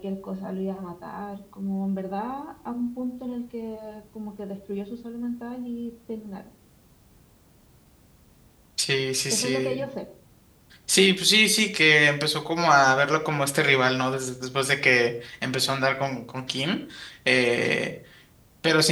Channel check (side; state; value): both; identical; correlation 1.00